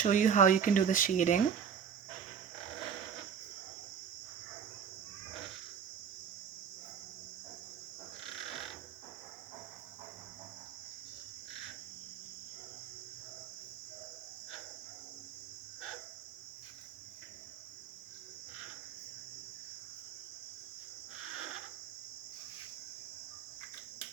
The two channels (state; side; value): quieter; left; 7.4 dB